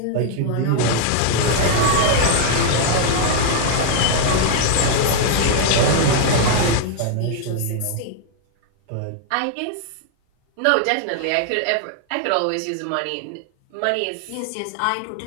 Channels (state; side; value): different; both; correlation 0.00